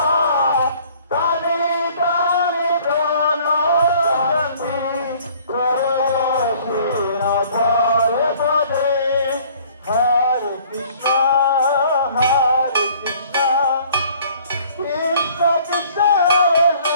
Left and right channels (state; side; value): inverted; both; correlation -0.55